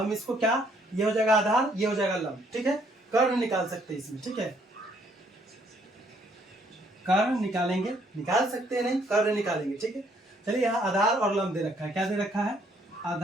इसको क्या, ये हो जाएगा आधार, ये हो जाएगा लंब। ठीक है, कर्ण निकाल सकते हैं इसमें। ठीक है, कर्ण निकालेंगे, निकाल सकते हैं नहीं, कर्ण निकालेंगे। ठीक है, चलिए यहाँ आधार और लंब दे रखा है। क्या दे रखा है,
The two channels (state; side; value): normal; both; correlation 0.67